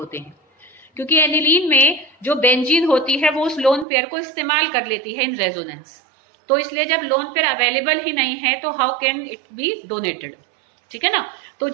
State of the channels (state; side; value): drops out; left; at 3.9 s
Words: हैं, क्योंकि एनिलीन में जो बेंजीन होती है वो उस लोन पेयर को इस्तेमाल कर लेती है इन रेजोनेंस, तो इसलिए जब लोन पेयर अवेलेबल ही नहीं है तो how can it be donated, ठीक है ना। तो